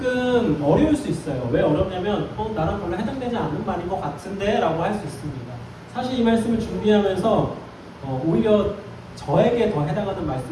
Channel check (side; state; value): both; identical; correlation 1.00